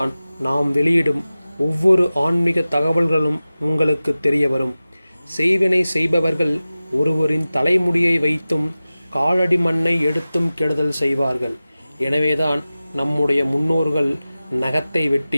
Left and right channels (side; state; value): both; inverted; correlation -0.96